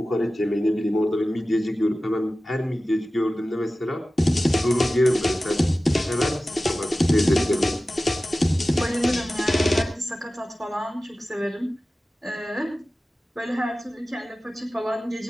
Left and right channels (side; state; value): both; normal; correlation 0.95